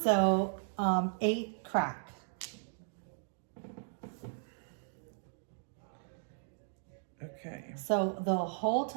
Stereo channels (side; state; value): left; silent; digital silence